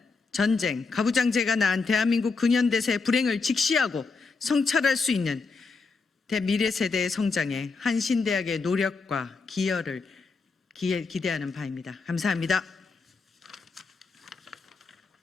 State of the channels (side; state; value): right; quieter; 4.4 dB